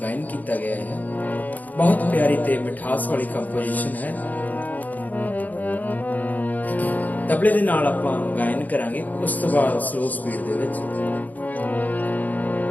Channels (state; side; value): late; right; 0.080 ms